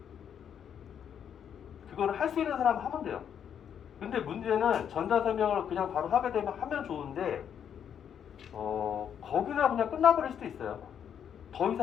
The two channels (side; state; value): right; quieter; 8.5 dB